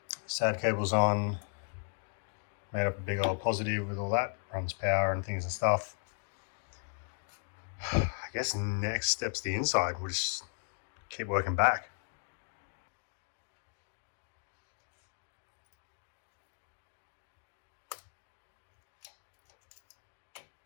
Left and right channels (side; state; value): right; silent; 54 dB below the other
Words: SAD cable's on. Made up a big old positive with all that. Runs power and things and stuff. I guess next step's the inside. We'll just keep working back.